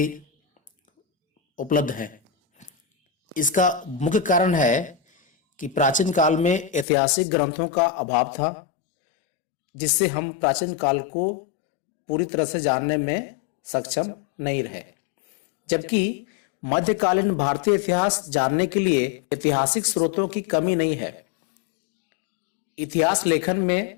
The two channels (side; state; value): right; drops out; at 6.9 s